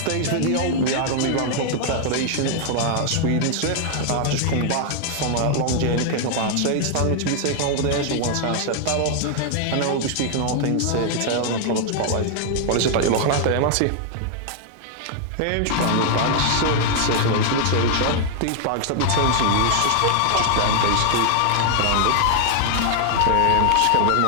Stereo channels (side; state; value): both; different; correlation 0.00